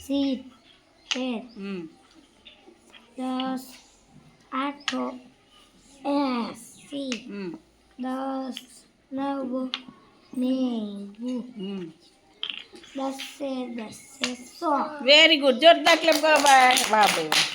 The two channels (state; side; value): identical; both; correlation 1.00